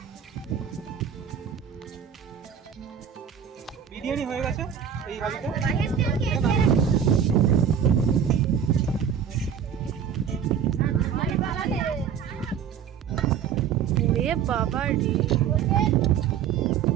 বিরিয়ানি হয়ে গেছে এই হাঁড়িতে। ওরে বাবা রে,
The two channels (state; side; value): quieter; left; 8.1 dB